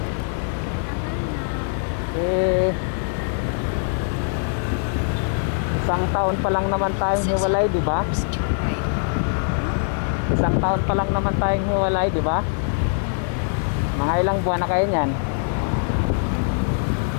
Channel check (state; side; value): silent; right; 64 dB below the other